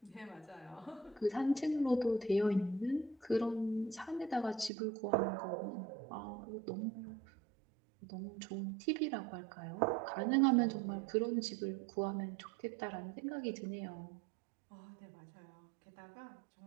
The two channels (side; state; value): left; drops out; at 4.7 s